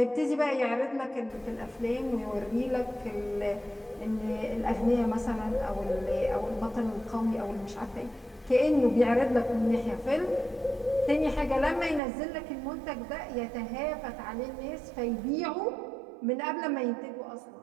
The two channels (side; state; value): left; drops out; at 12.0 s